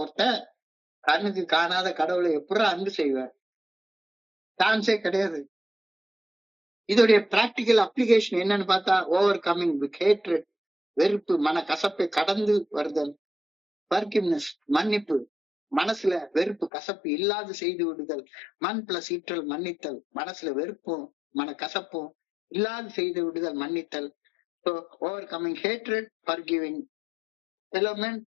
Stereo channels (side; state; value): right; drops out; at 16.7 s